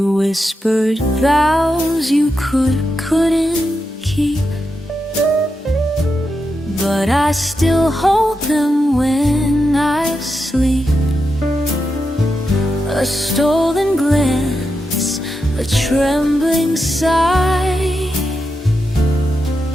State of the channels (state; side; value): normal; both; correlation 0.87